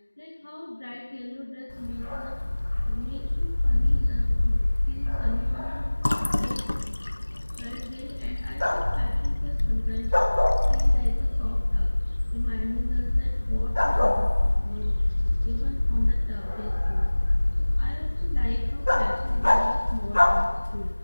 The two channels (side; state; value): both; inverted; correlation -1.00